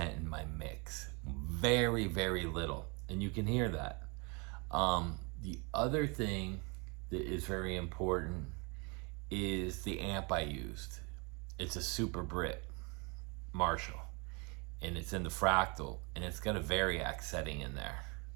in my mix. Very, very little. And you can hear that. The other thing that is very important is the amp I used. It's a Super Brit Marshall, and it's in the fractal, and it's got a Variac setting in there.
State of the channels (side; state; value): left; quieter; 31.3 dB